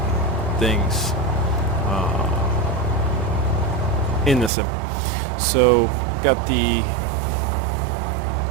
things in the sim. So, got the...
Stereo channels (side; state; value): left; drops out; at 4.5 s